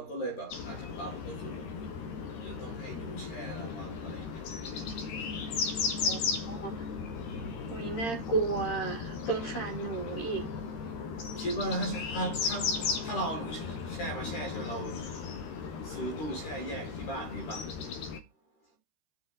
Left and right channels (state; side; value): late; right; 13 ms